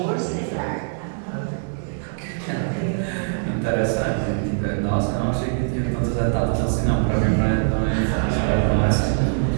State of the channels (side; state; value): left; silent; digital silence